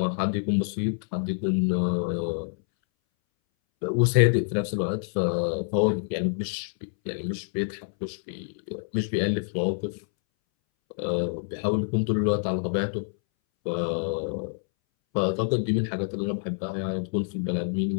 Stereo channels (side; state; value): right; silent; 60 dB below the other